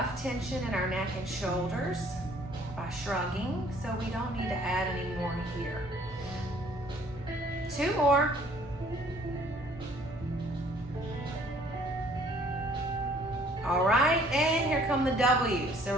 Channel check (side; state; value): both; normal; correlation 0.58